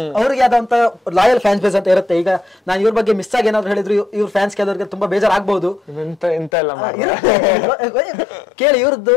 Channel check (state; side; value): drops out; right; at 6.5 s